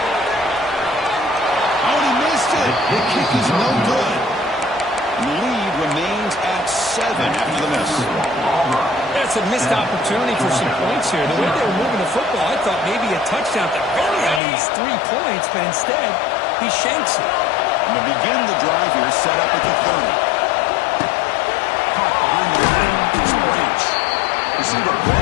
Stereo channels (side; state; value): right; drops out; at 14.4 s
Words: The kick is no good. The lead remains at 7 after the miss. That's a missed opportunity for some points here. The way they were moving the football, I thought maybe a touchdown at the very least 3 points, but instead he shanks it. And to begin the drive here, set up at the 30. Caught behind the line, it's Branch. Receiver